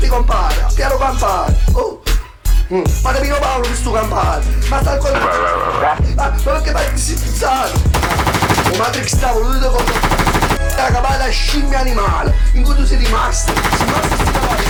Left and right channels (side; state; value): both; identical; correlation 1.00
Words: compare, piano campare. Oh. Ma Pino Paolo questo campare. Ma sta ancora. Ma perché fai si pizzare? O Matrix sta voluto con la capata scimmia animale. In cui tu sei rimasto.